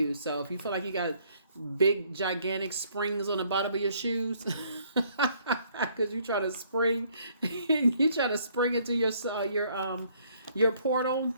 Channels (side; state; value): both; inverted; correlation -0.64